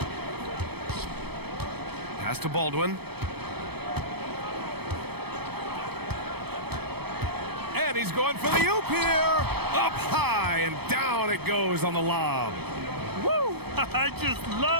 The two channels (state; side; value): late; left; 0.97 ms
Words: Pass to Baldwin. And he's going for the oop here. Up high and down it goes on the lob. Woo! I just